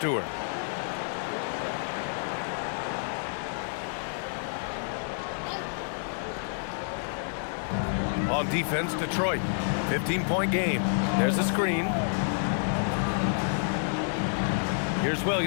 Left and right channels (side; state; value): right; silent; digital silence